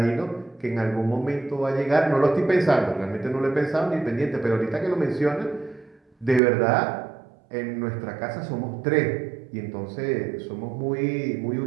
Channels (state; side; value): drops out; left; at 6.4 s